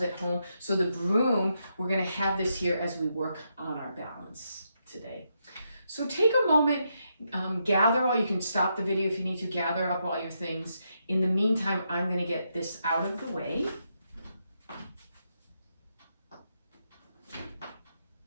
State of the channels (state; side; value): inverted; both; correlation -0.81